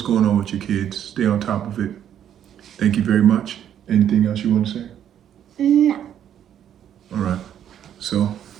going on with your kids, stay on top of it. Thank you very much. Anything else you want to say? No. All right. So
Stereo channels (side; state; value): left; quieter; 9.9 dB